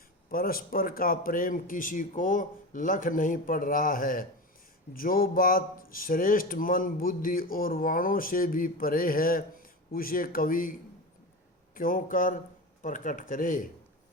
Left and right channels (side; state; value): both; normal; correlation 0.25